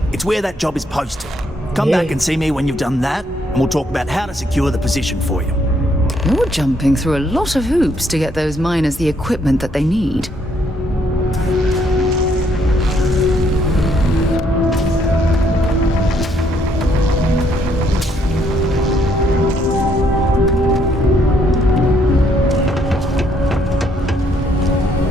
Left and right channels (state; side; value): normal; both; correlation 0.70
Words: It's where that job is posted. Come back and see me when you've done that, and we'll talk about how to secure the position for you. You're jumping through a lot of hoops to get those miners the equipment that they need.